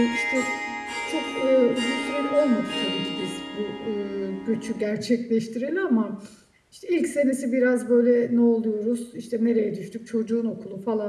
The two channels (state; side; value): identical; both; correlation 1.00